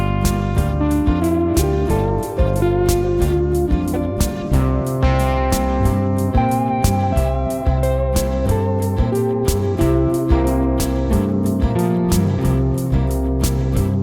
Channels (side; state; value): both; identical; correlation 1.00